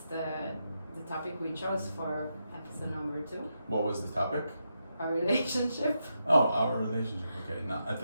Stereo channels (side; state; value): both; inverted; correlation -0.84